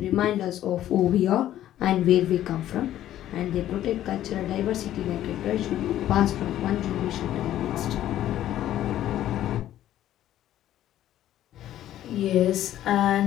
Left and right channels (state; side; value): quieter; right; 12.5 dB